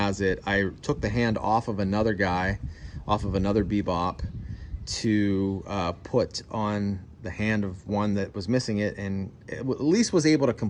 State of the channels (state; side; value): identical; both; correlation 1.00